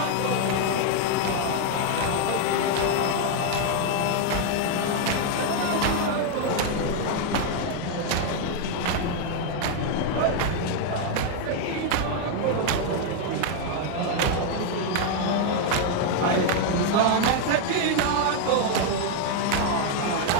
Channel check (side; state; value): both; different; correlation 0.00